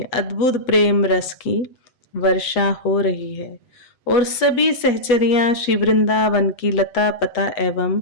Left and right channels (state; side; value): late; right; 7.7 ms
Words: अद्भुत प्रेम रस की वर्षा हो रही है और सभी सहचरियां श्री वृंदावन की लता पता एवं